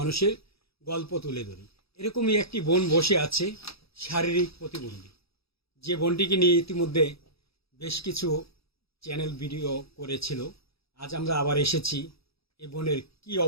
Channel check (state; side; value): late; right; 0.77 ms